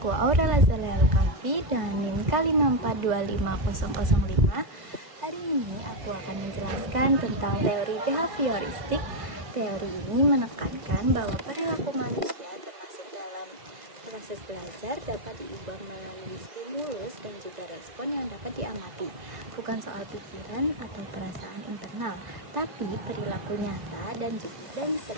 Aurel Azalea Alkafi dengan NIM K5425005. Hari ini aku akan menjelaskan tentang teori behavioristik. Teori ini menekankan bahwa perilaku manusia termasuk dalam proses belajar dapat diubah melalui stimulus dan juga respon yang dapat diamati. Bukan soal pikiran atau perasaan internal, tapi perilaku nyata dan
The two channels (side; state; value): left; late; 1.5 ms